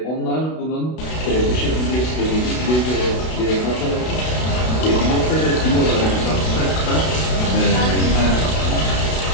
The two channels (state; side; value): late; right; 32 ms